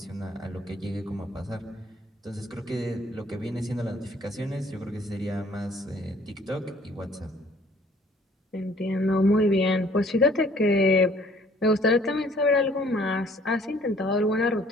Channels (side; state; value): both; normal; correlation 0.58